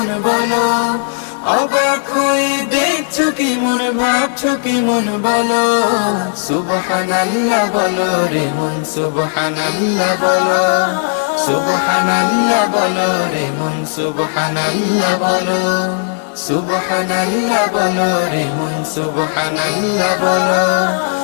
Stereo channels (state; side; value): silent; right; 70 dB below the other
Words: বলো, অবাক হয়ে দেখছো কি মন, ভাবছো কি মন বলো। সুবহানাল্লাহ বলো রে মন, সুবহানাল্লাহ বলো, সুবহানাল্লাহ বলো রে মন, সুবহানাল্লাহ বলো, সুবহানাল্লাহ বলো রে মন, সুবহানাল্লাহ বলো,